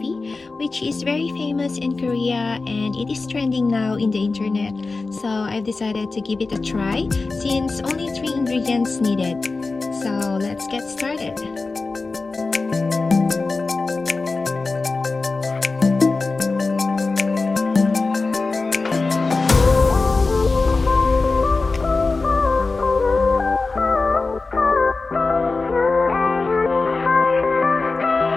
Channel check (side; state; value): right; quieter; 3.8 dB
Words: which is very famous in Korea and it is trending now in the internet. So I've decided to give it a try since only 3 ingredients needed. So let's get started.